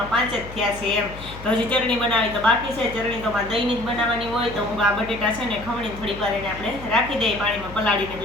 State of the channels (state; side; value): noise; left; hum, 14 dB below the sound